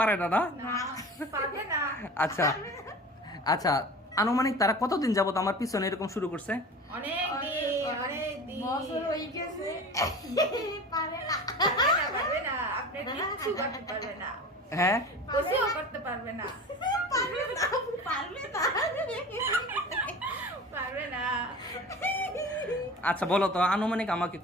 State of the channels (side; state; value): both; normal; correlation 0.36